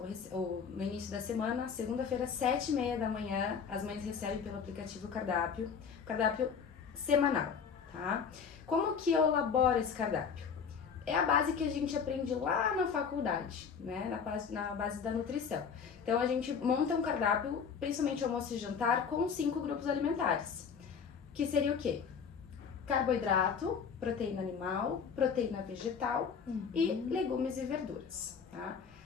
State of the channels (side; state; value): right; quieter; 6.4 dB